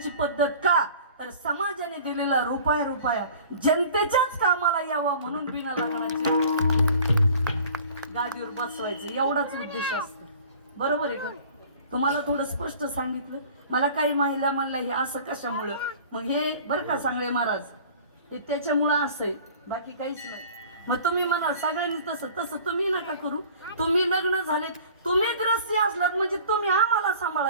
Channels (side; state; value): both; inverted; correlation -0.47